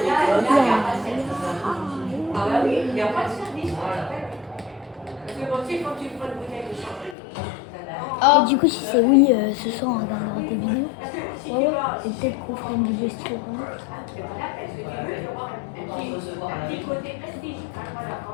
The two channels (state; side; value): drops out; right; at 7.2 s